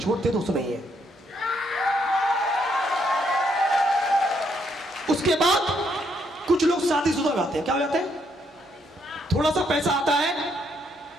दोस्त नहीं है। उसके बाद कुछ लोग शादीशुदा हो जाते हैं। क्या हो जाते हैं? थोड़ा सा पैसा आता है,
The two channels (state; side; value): normal; both; correlation 0.74